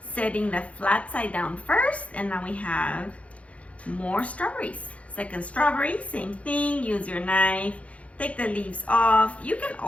Setting the flat side down first, and now we have more strawberries. Second strawberry, same thing, use your knife. Take the leaves off. You can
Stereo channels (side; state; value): right; late; 0.064 ms